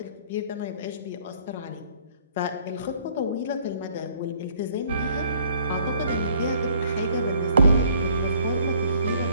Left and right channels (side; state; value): both; inverted; correlation -0.60